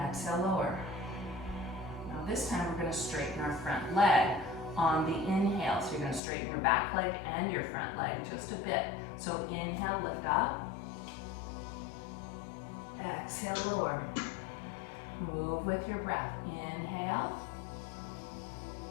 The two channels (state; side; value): drops out; right; at 6.2 s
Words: lower. Now this time we're going to straighten our front leg on the inhale. So you're going to straighten your back leg and your front leg just a bit. So inhale, lift up, exhale, lower. Move with your breath. Inhale